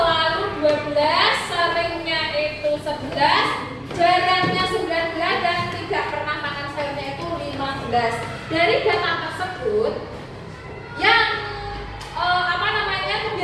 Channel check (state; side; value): identical; both; correlation 1.00